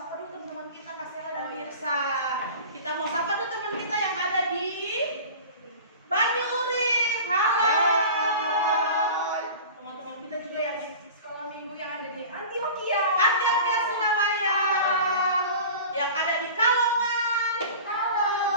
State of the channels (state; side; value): inverted; both; correlation -0.37